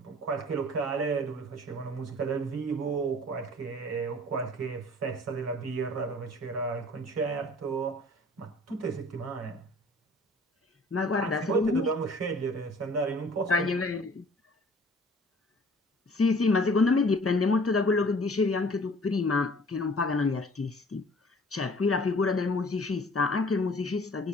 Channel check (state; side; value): normal; both; correlation 0.51